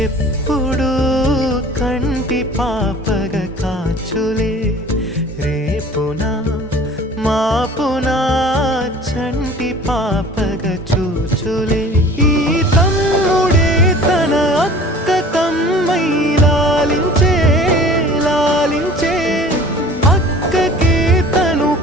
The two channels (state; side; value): normal; both; correlation 0.45